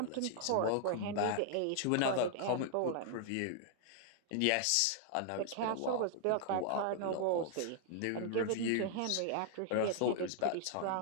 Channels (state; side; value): different; both; correlation -0.01